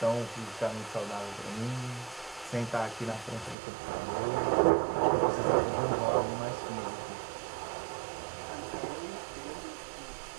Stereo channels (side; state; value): left; drops out; at 3.6 s